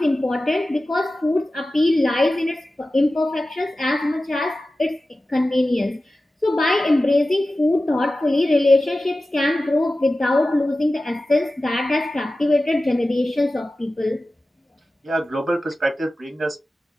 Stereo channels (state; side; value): normal; both; correlation 0.95